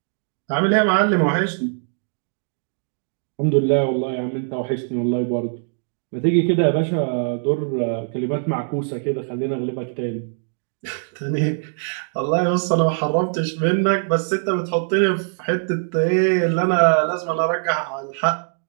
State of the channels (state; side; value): silent; left; digital silence